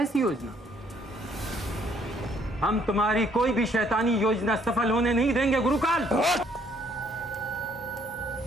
योजना? हम तुम्हारी कोई भी शैतानी योजना सफल होने नहीं देंगे गुरुकाल।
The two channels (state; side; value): normal; both; correlation 0.64